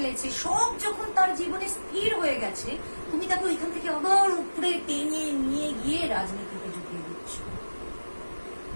সব যখন তার জীবনে স্থির হয়ে গেছে, তুমি তাকে ওইখান থেকে আবার উপরে টেনে নিয়ে গিয়ে রাজনীতিতে ঢুকিয়ে দিচ্ছ।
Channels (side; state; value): both; inverted; correlation -1.00